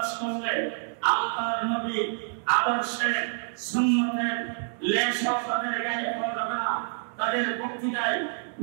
করলে আল্লাহর নবী আদর্শে সুন্নতের লেশও তাদের গায়ে পাওয়া যাবে না। তাদের বক্তৃতায়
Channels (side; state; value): left; silent; 60 dB below the other